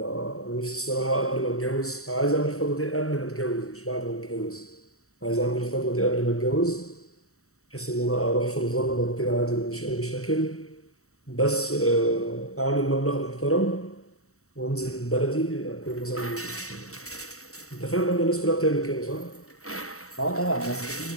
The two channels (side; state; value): right; late; 0.64 ms